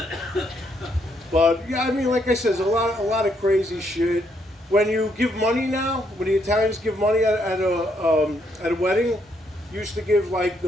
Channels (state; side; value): normal; both; correlation 0.74